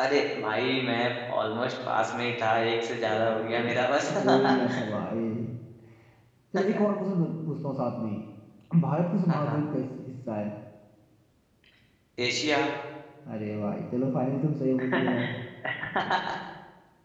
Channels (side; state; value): both; identical; correlation 1.00